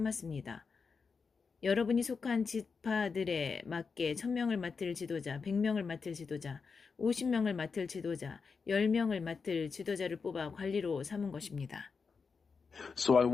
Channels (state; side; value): quieter; right; 5.2 dB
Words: 여러분이 속한 지파들에 맞게 1000명을 맡을 지도자, 100명을 맡을 지도자, 50명을 맡을 지도자, 10명을 맡을 지도자를 뽑아 관리로 삼은 것입니다. So I